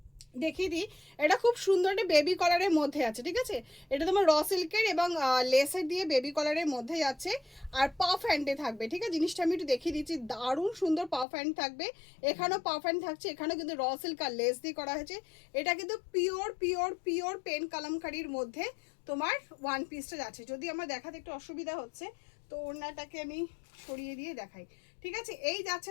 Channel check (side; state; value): right; drops out; at 11.2 s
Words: দেখিয়ে দিই। এটা খুব সুন্দর একটা বেবি কলারের মধ্যে আছে, ঠিক আছে। এটা তোমার র সিল্কের এবং লেসের দিয়ে বেবি কলারের মধ্যে যাচ্ছে, আর পাফ হ্যান্ডে থাকবে, ঠিক আছে। জিনিসটা আমি একটু দেখিয়ে দিচ্ছি, দারুণ সুন্দর পাফ হ্যান্ড থাকবে। এখানেও পাফ হ্যান্ড থাকছে, এখানেও কিন্তু র সিল্ক আর লেস দিয়ে করা হয়েছে। এটা কিন্তু পিওর পিওর পিওর পেন কালামকারির মধ্যে তোমার ওয়ান পিসটা যাচ্ছে। যদি আমার দেখাতে একটু অসুবিধা হচ্ছে তো ওড়নাটাকে আমি সরিয়ে দিয়ে দেখাই, ঠিক আছে। এই যাচ্ছে